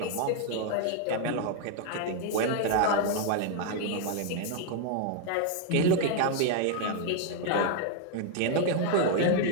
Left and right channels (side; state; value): both; different; correlation 0.00